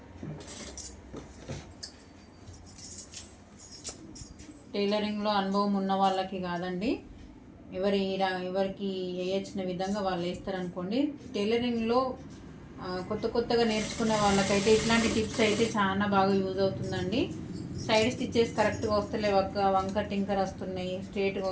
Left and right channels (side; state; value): both; identical; correlation 1.00